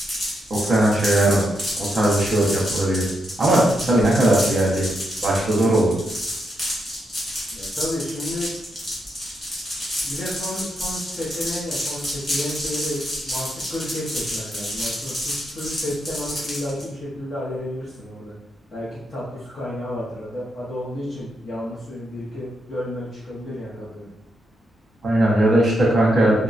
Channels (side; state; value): both; normal; correlation 0.82